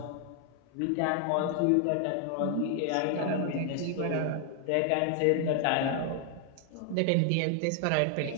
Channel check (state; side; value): different; both; correlation 0.00